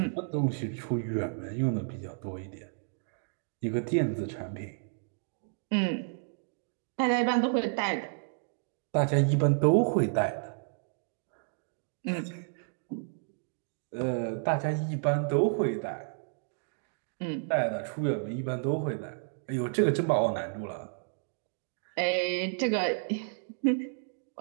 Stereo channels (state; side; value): silent; left; digital silence